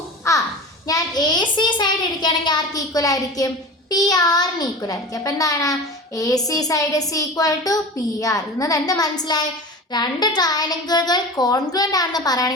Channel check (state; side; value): normal; both; correlation 0.33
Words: ഞാൻ AC സൈഡ് എടുക്കുകയാണെങ്കിൽ ആർക്ക് ഈക്വൽ ആയിരിക്കും? PR-ന് ഈക്വൽ ആയിരിക്കും. അപ്പം എന്താണ്? AC side is equal to PR. ഇന്നത് എന്ത് മനസ്സിലായി? രണ്ട് ട്രയാങ്കിളുകൾ കോൺഗ്രുവൻ്റ് ആണെന്ന്